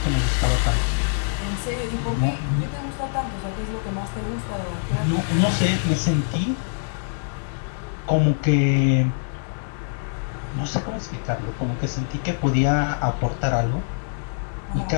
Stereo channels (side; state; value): right; silent; 62 dB below the other